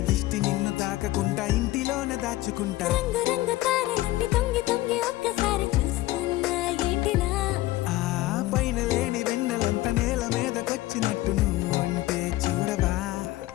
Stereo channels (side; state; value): right; quieter; 17.5 dB